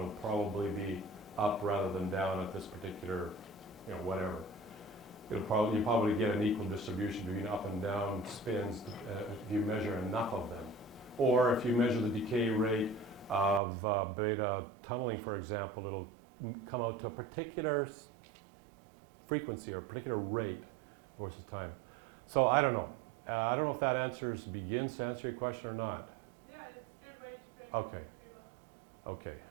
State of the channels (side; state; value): left; drops out; at 13.6 s